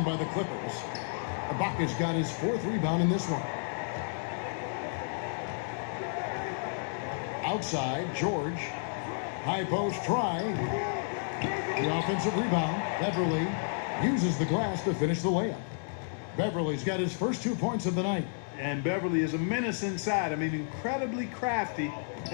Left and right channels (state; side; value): silent; right; digital silence